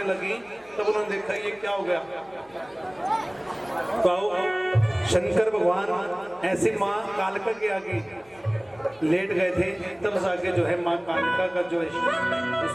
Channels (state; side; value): noise; left; hum, 29 dB below the sound